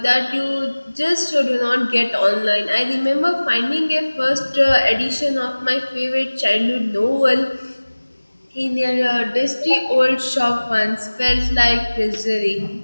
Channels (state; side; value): inverted; both; correlation -1.00